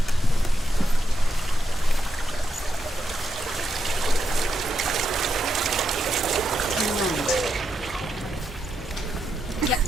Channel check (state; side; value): normal; both; correlation 0.83